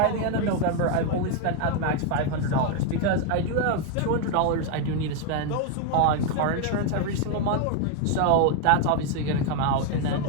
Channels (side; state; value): both; different; correlation 0.01